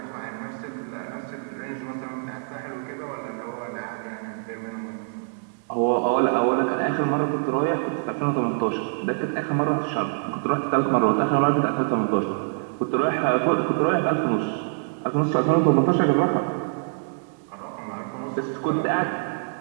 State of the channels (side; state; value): left; silent; 59 dB below the other